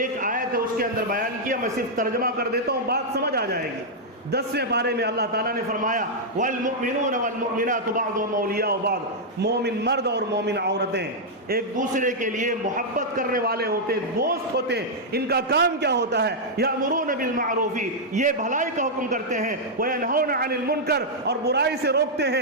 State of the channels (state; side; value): normal; both; correlation -0.05